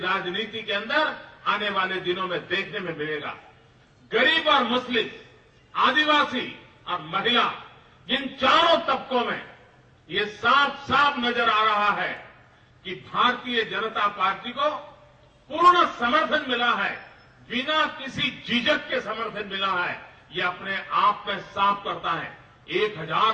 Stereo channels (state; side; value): identical; both; correlation 1.00